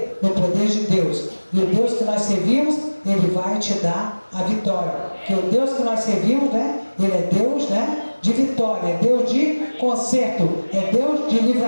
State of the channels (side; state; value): both; inverted; correlation -1.00